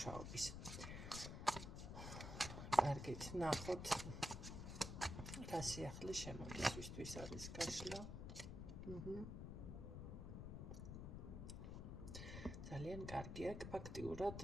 კარგით, ნახოთ რა სიახლე შემოდის, ვისთვის არის გაშლა. ძალიან კარგი აქ ფაქტიურად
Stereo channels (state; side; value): noise; left; rumble, 6 dB below the sound